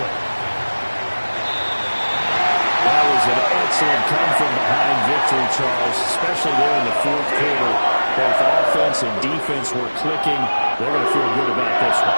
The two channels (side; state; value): both; inverted; correlation -1.00